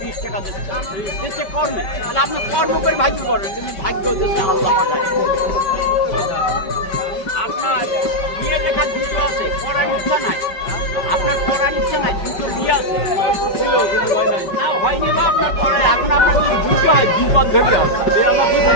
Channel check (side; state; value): right; late; 5.2 ms